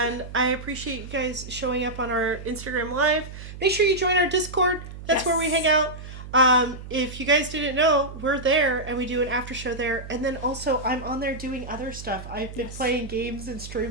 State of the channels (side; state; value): right; noise; hum, 12 dB below the sound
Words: I appreciate you guys showing up on our Instagram Live. Make sure you join our Discord. That's where we hang out. If you guys didn't know, we're there and we do an after show there. And then also I'm on there doing other stuff. I've been playing games and